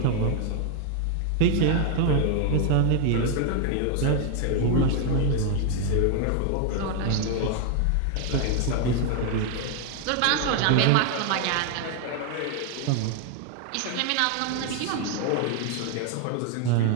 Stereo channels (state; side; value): different; both; correlation 0.00